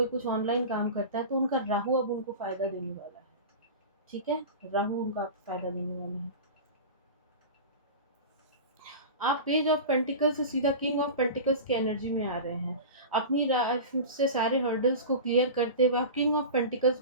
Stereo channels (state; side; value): inverted; both; correlation -0.31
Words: कुछ ऑनलाइन काम करता है तो उनका राहु अब उनको फ़ायदा देने वाला है, ठीक है? राहु उनका फ़ायदा देने वाला है। आप पेज ऑफ पेंटिकल्स से सीधा किंग ऑफ पेंटिकल्स की एनर्जी में आ रहे हैं। अपनी लाइफ से सारे हर्डल्स को क्लियर करते हुए आप किंग ऑफ पेंटिकल्स